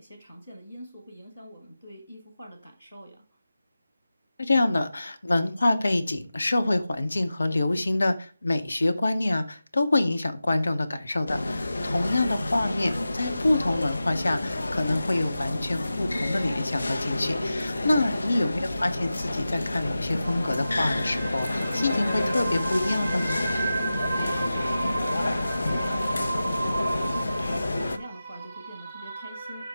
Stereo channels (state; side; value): inverted; both; correlation -0.94